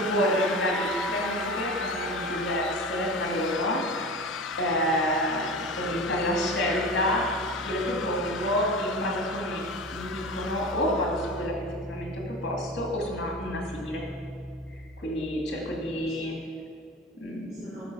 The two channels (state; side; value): normal; both; correlation 0.32